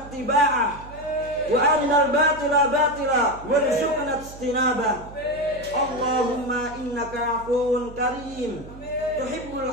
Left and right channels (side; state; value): right; noise; hum, 17 dB below the sound